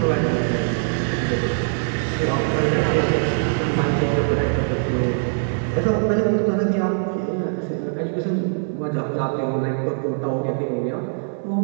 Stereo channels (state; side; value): silent; left; 64 dB below the other